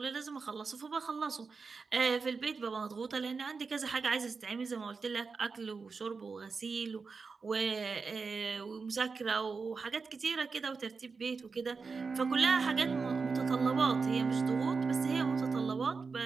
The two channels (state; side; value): quieter; left; 4.7 dB